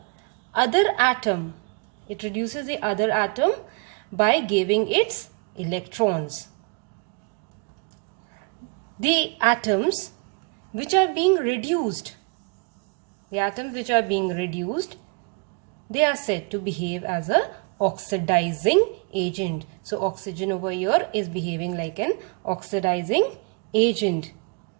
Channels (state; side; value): quieter; left; 35.1 dB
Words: other atom. It reduces the other atom by giving its electrons. The atoms which are being reduced, they are said to behave as a oxidizing agent. So oxygen over here is behaving like an oxidizing agent.